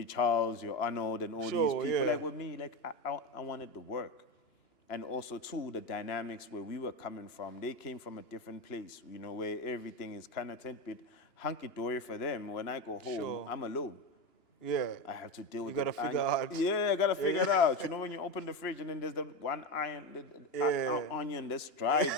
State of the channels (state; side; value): late; right; 2.9 ms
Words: Charles, your Arnold, and all these people. Yeah. Like with me, like I wanted to work. And also, too, the dynamics where we were coming from, they came from a different place, you know, where everything is kind of a bit hunky-dory for them. When I go home, I'm alone. Yeah. I have to deal with it. You got to figure out. Yeah, I got to figure it out. You know, when you open the fridge and then there's the one onion that's dried